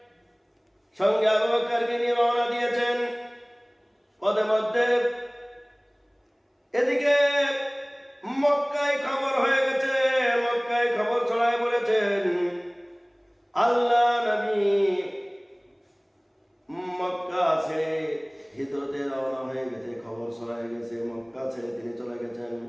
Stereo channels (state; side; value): identical; both; correlation 1.00